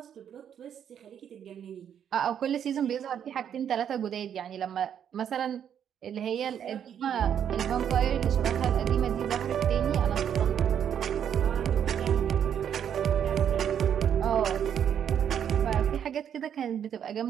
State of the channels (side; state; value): left; quieter; 8.9 dB